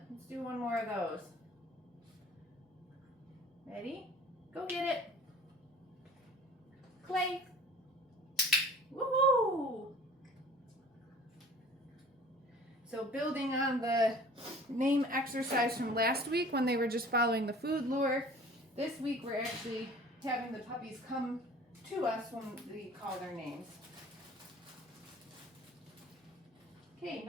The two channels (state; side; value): normal; both; correlation 0.47